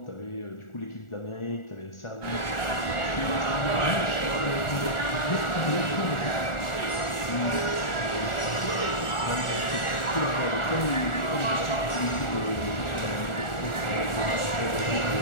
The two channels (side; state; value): right; late; 1.4 ms